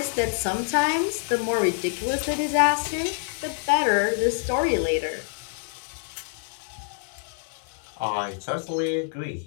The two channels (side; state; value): right; silent; 61 dB below the other